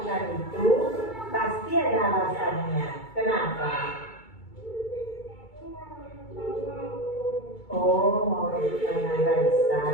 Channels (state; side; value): late; right; 2.3 ms